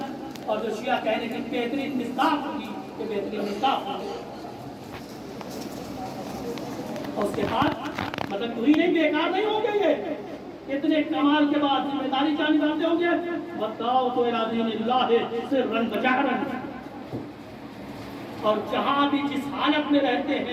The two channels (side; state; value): both; identical; correlation 1.00